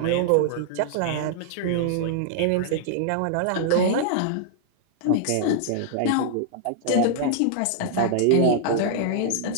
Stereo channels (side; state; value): both; different; correlation -0.01